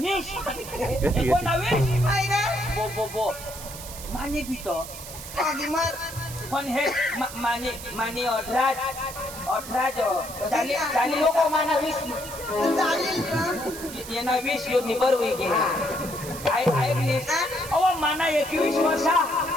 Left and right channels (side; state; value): right; noise; hiss, 12 dB below the sound